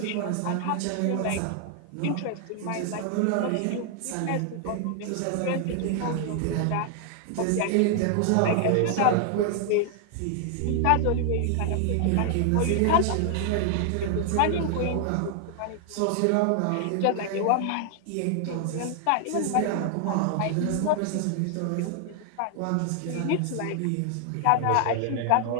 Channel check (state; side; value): different; both; correlation 0.00